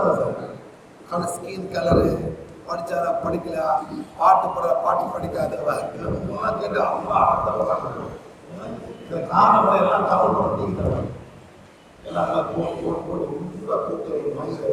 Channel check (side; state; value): both; identical; correlation 1.00